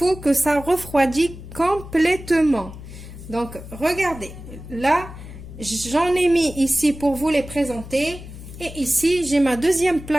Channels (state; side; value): noise; left; hum, 14 dB below the sound